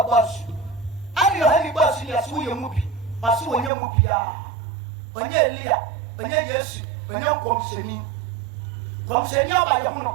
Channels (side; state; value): left; drops out; at 3.7 s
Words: bus. And your heavy bus in your swing movie, or so when you movie when you're Leah, when you're yes, when you're concerning by the moon.